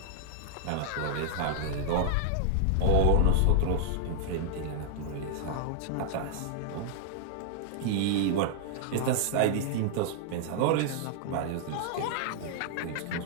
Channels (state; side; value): different; both; correlation -0.01